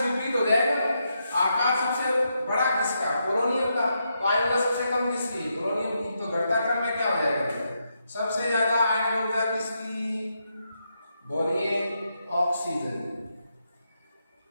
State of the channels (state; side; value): inverted; both; correlation -0.82